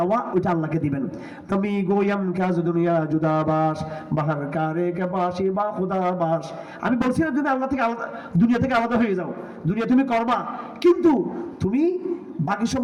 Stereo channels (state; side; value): identical; both; correlation 1.00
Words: ওইটা আল্লাহকে দিবেন। তুমি গোয়াম কাজ দুনিয়া জুদাবাস বাহার কারে কে বাসি বা খুদাবাস। আমি বলছি না তুমি আল্লাহ থেকে আলাদা, দুনিয়া থেকে আলাদা হয়ে যাও, দুনিয়া তুমি করবা, কিন্তু তুমি বাকি